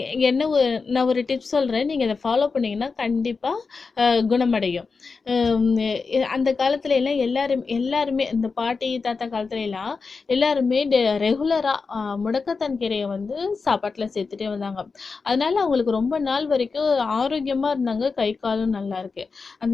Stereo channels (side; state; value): right; quieter; 4.6 dB